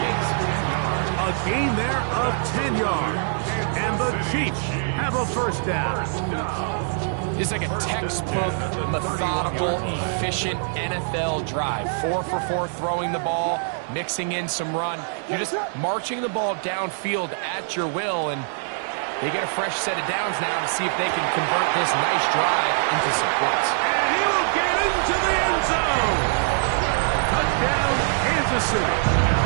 it is. A gain there of 10 yards. And the Chiefs have a first down. It's like a textbook, methodical, efficient NFL drive. 4 for 4 throwing the ball, mixing in some run. You're just marching the ball downfield at your will, and they get a fresh set of downs now to see if they can convert this nice drive into some points. And he will get into the end zone. Touchdown, Kansas City.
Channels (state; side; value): silent; left; digital silence